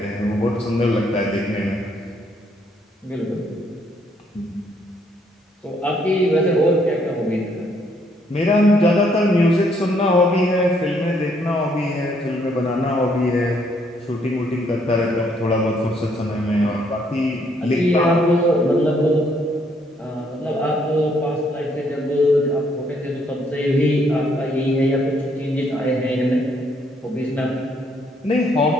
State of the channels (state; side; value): normal; both; correlation 0.69